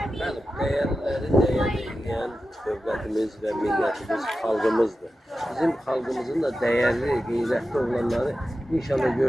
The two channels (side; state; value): both; normal; correlation 0.92